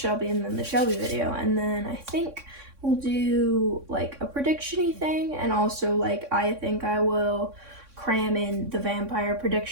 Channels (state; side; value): late; left; 3.6 ms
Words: and then the Shelby video, and then I think we'll do, like, a prediction-y thing, and also, like, I think I will cram in the vampire